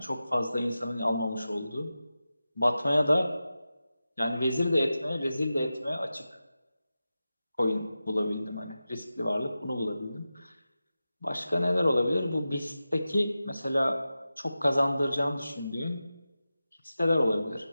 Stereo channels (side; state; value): both; inverted; correlation -0.93